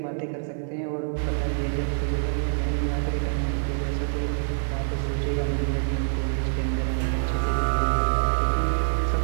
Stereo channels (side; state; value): left; silent; 61 dB below the other